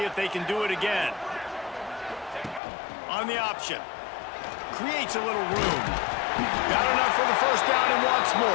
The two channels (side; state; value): right; drops out; at 2.6 s